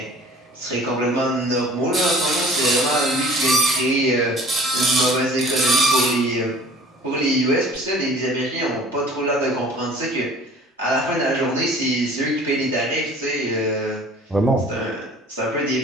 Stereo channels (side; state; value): both; normal; correlation 0.49